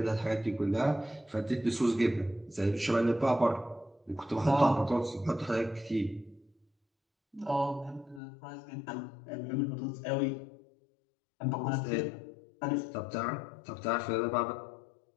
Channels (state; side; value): drops out; right; at 8.2 s